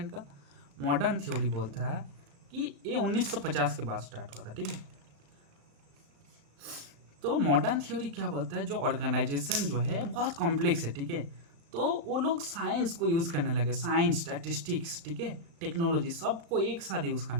का? मॉडर्न थ्योरी बोलता है कि ये 1950 के बाद स्टार्ट हुआ था, ठीक है। तो मॉडर्न थ्योरी क्या बोलता है, जो ऑर्गेनाइजेशन जो है बहुत कॉम्प्लेक्स है, ठीक है। तो वो लोग साइंस को यूज़ करने लगे, साइंस, स्टैटिस्टिक्स, ठीक है, टेक्नोलॉजी, सबको एक साथ यूज़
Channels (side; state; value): left; late; 35 ms